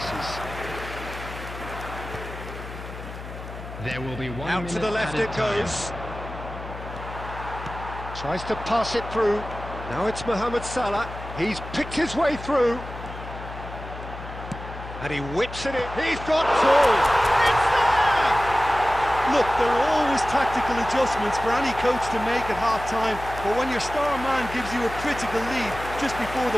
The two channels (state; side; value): noise; left; hum, 11 dB below the sound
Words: There will be 1 Out to the left it goes. Tries to pass it through. Now it's Mohamed Salah. He's picked his way through. And he whips it in. He's got through. It's there! Look, there are always tactical adjustments for any coach to make at half-time, but when your star man gives you a critical lead just before